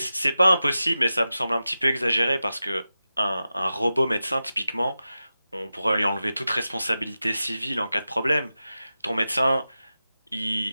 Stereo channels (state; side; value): inverted; both; correlation -0.93